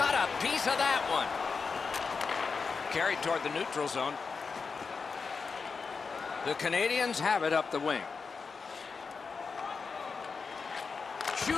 a piece of that one. Carried toward the neutral zone. The Canadiens have it up the wing.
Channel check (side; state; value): right; quieter; 5.0 dB